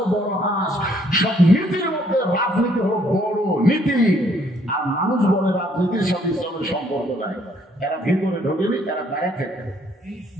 বড় হাঁস, সব নীতির মধ্যে রাজনীতি হলো বড় নীতি, আর মানুষ বলে রাজনীতির সাথে ইসলামের সম্পর্ক নাই, এরা ভিতরে ঢোকেনি, এরা বাইরে থেকে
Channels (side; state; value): both; normal; correlation 0.66